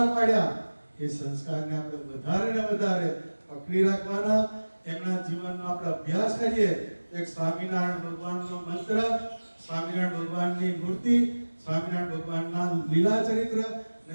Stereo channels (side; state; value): both; inverted; correlation -1.00